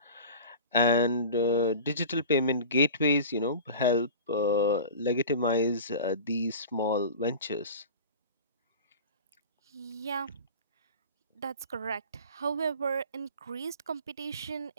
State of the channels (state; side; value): inverted; both; correlation -0.36